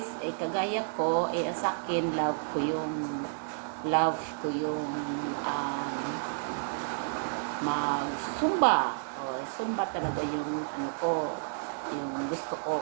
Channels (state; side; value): silent; left; digital silence